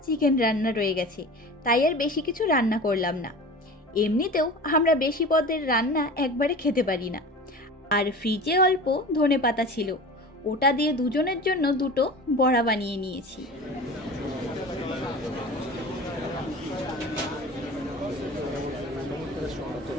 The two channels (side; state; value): both; normal; correlation 0.36